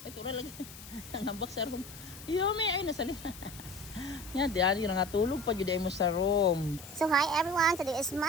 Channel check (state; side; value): noise; left; hiss, 16 dB below the sound